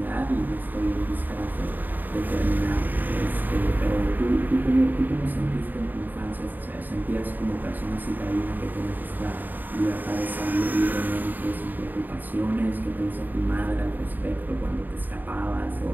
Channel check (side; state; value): left; late; 0.088 ms